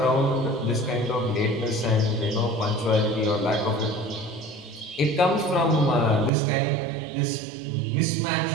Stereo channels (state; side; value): drops out; left; at 6.3 s